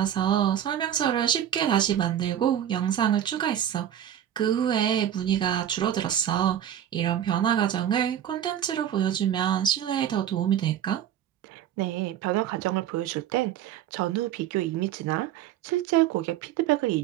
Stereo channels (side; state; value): left; quieter; 10.4 dB